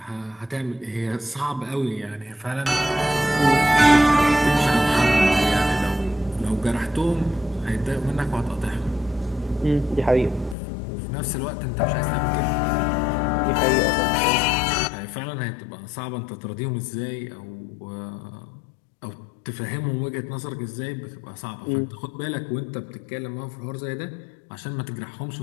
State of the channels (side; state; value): right; drops out; at 10.6 s